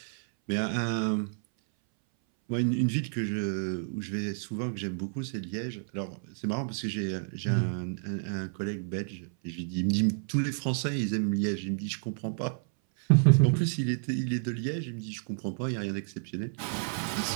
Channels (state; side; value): silent; left; 58 dB below the other